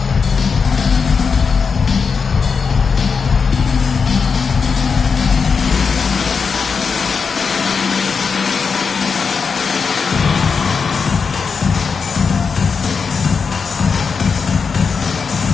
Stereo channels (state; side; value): quieter; right; 5.5 dB